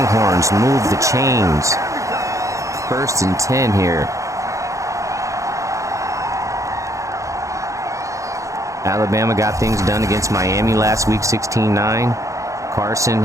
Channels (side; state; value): left; late; 0.15 ms